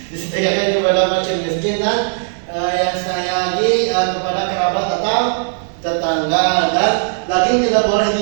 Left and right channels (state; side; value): silent; left; 58 dB below the other